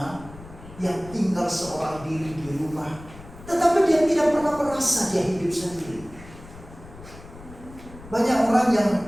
yang tinggal seorang diri di rumah, tetapi dia tidak pernah merasa dia hidup sendiri. Banyak orang yang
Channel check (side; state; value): left; noise; rumble, 18 dB below the sound